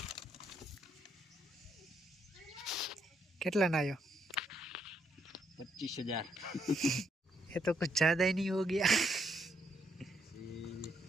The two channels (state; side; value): normal; both; correlation 0.75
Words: कितना ना आयो 25,000. ये तो कुछ ज़्यादा ही नहीं हो गया।